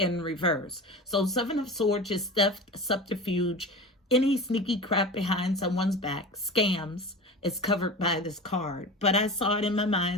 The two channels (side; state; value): both; normal; correlation 0.32